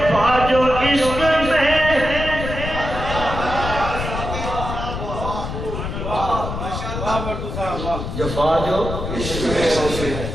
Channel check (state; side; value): noise; left; rumble, 5 dB below the sound